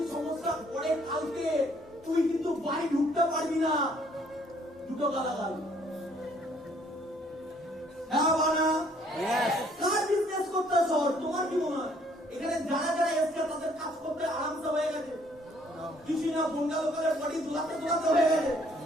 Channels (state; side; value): normal; both; correlation 0.63